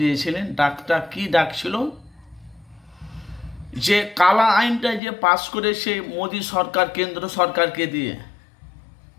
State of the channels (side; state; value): right; drops out; at 5.0 s